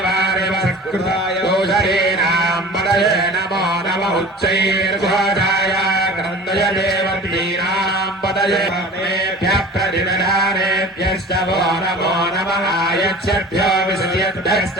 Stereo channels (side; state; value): both; normal; correlation 0.40